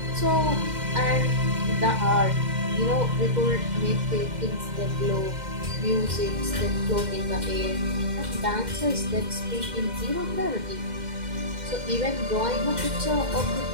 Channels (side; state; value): left; late; 2.1 ms